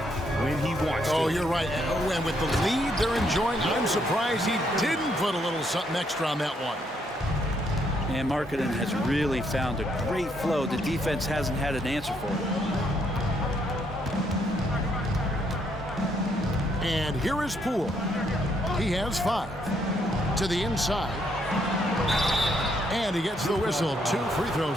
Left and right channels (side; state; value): both; normal; correlation 0.73